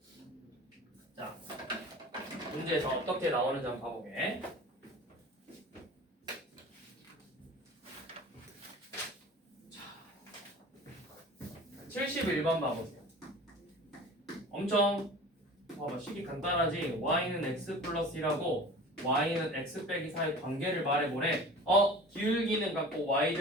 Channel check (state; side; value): normal; both; correlation 0.40